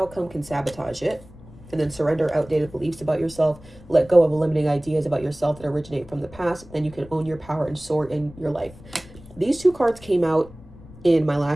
can sabotage it. And then surrender outdated beliefs about yourself. Let go of limiting ideas about yourself that originate from the past. Then you can own your power and soar in your life. These two cards came out in my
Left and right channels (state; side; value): noise; left; rumble, 20 dB below the sound